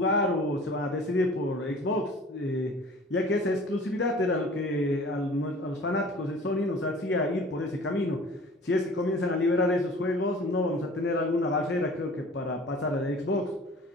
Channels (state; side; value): normal; both; correlation 0.46